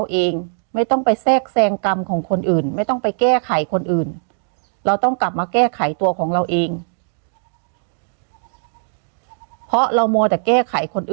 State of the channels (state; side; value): silent; left; digital silence